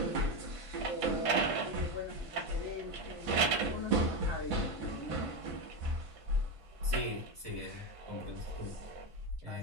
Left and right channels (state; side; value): late; left; 1.5 ms